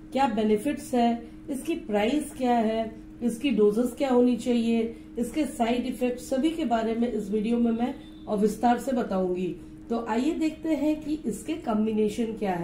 क्या बेनिफिट्स है, इसकी प्राइस क्या है, इसकी डोजेस क्या होनी चाहिए, इसके साइड इफेक्ट सभी के बारे में इस वीडियो में मैं विस्तार से बताऊंगी। तो आइए देखते हैं कि इसके कॉम्बिनेशन क्या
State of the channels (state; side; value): identical; both; correlation 1.00